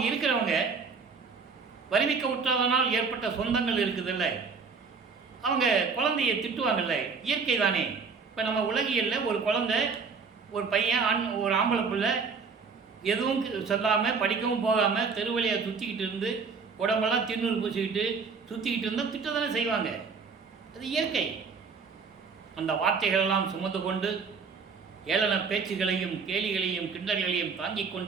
இருக்கிறவங்க வருவிக்க விட்டதனால் ஏற்பட்ட சொந்தங்கள் இருக்குதில்ல, அவங்க குழந்தையை திட்டுவாங்கல்ல, இயற்கை தானே. இப்போ நம்ம உலகியலில் ஒரு குழந்தை, ஒரு பையன், ஒரு ஆம்பளை பிள்ளை எதுவும் சொல்லாமல் படிக்கவும் போகாமல் தெருவழியை சுற்றிக்கிட்டு இருந்து உடம்பெல்லாம் திண்ணூறு பூசிக்கிட்டு சுற்றிக்கிட்டு இருந்தால் திட்ட தானே செய்வாங்க. அது இயற்கை. அந்த வார்த்தைகளெல்லாம் சுமந்து கொண்டு ஏளன பேச்சுகளையும் கேலிகளையும் கிண்டல்களையும் தாங்கிக்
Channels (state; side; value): quieter; left; 5.1 dB